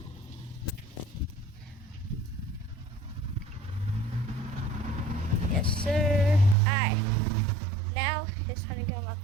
Yes, sir. Alright. Now it's time to get on my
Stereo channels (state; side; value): drops out; left; at 6.6 s